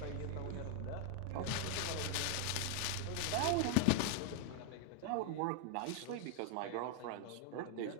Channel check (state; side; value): different; both; correlation 0.00